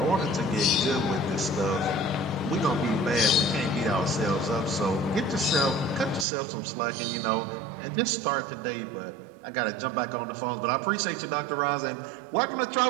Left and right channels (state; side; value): drops out; left; at 6.2 s